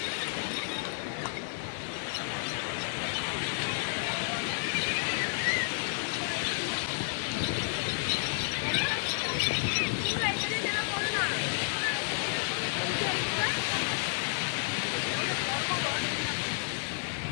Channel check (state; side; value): silent; right; digital silence